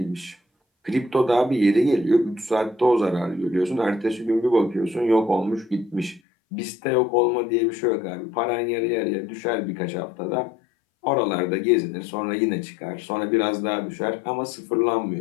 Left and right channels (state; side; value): drops out; right; at 6.2 s